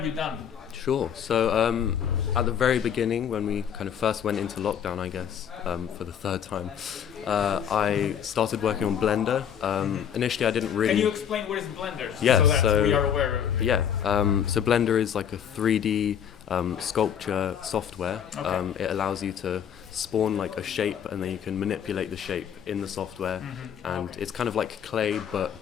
you done? Sure. So at the very beginning, when we kind of first went into lockdown, I guess, for the third time, I started working on Blender. Initially, I didn't really... Can you explain what is Blender? Yeah, so that so we are aware of it. Yeah, so Blender is like a 3D sculpture software. Okay. It allows you to spawn like a shape, and then you can manipulate the shape in the software, and it's kind of like clay but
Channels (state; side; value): quieter; right; 8.5 dB